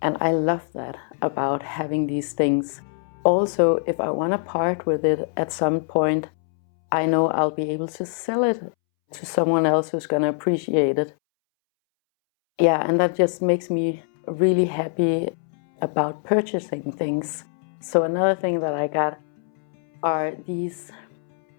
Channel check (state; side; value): silent; right; 63 dB below the other